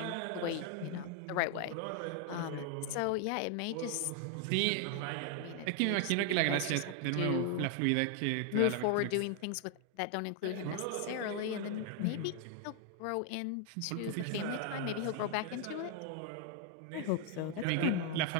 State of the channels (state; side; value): different; both; correlation 0.00